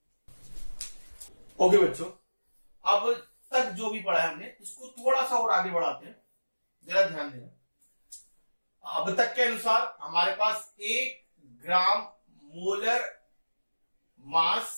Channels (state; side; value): inverted; both; correlation -1.00